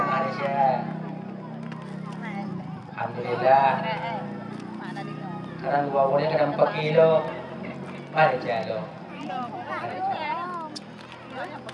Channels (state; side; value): identical; both; correlation 1.00